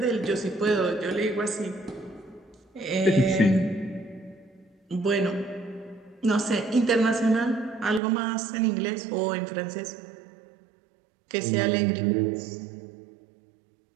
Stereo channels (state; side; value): drops out; left; at 8.0 s